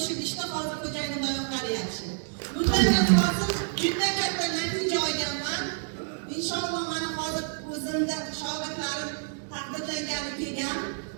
ishda hozir xo'jayinim oyoqlari yaxshi. Bundan hozir juda katta natija olganman. Inshaalloh mana hozir o'zimda shogirdlarim taqdirlangani kelgan.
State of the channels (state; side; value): silent; left; digital silence